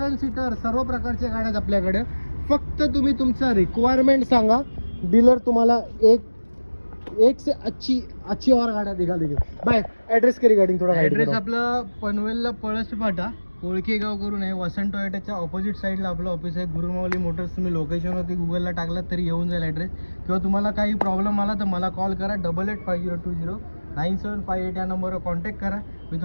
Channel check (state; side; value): inverted; both; correlation -1.00